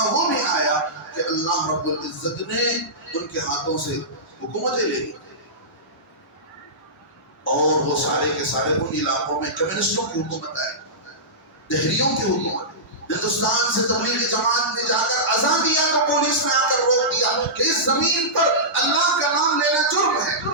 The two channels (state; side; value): normal; both; correlation -0.17